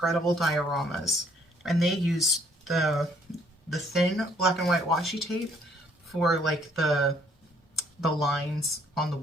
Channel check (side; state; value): both; normal; correlation 0.64